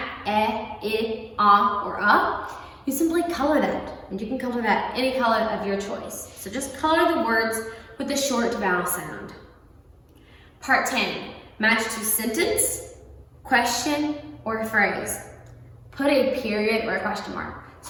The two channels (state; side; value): identical; both; correlation 1.00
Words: I, or you simply color that. And you can color that any color of your choice. So just color the words with the short vowel sound. Part 10, match to sentence, question, or phrase. Put a period or a question mark.